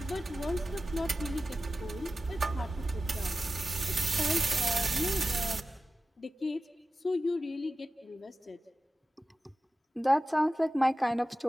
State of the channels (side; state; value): both; normal; correlation 0.94